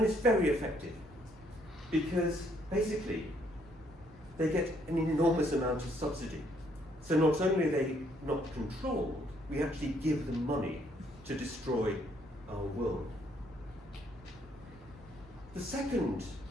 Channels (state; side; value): normal; both; correlation 0.69